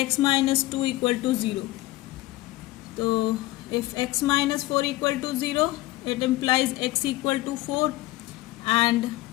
minus 2 equal to 0। तो if x minus 4 equal to 0, it implies x equal to 4, and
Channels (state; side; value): quieter; right; 17.8 dB